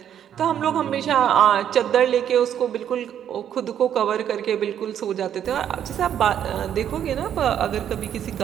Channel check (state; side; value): quieter; left; 9.7 dB